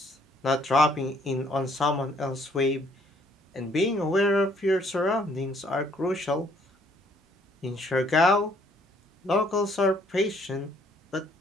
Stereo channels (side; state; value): both; normal; correlation 0.64